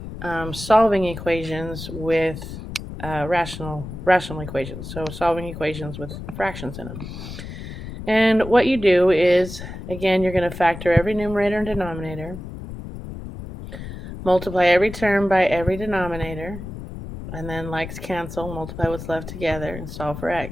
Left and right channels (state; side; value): noise; left; rumble, 10 dB below the sound